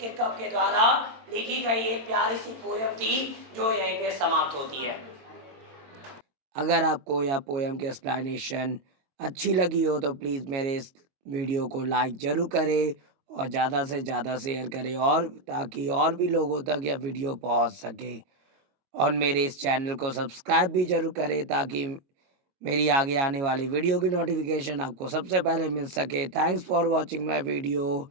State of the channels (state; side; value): late; left; 22 ms